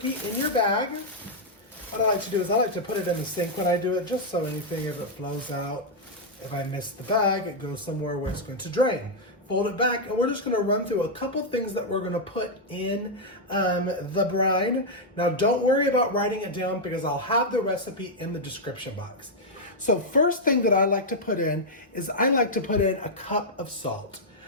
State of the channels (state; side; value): normal; both; correlation -0.03